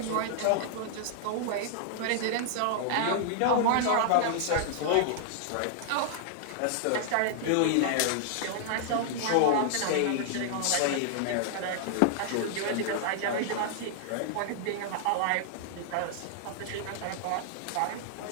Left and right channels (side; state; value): both; different; correlation -0.01